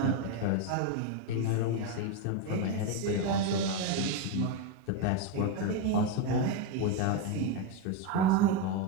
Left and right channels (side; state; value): both; different; correlation 0.03